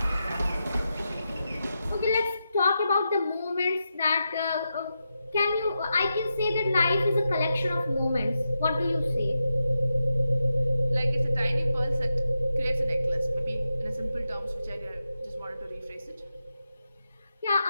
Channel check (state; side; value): inverted; both; correlation -0.88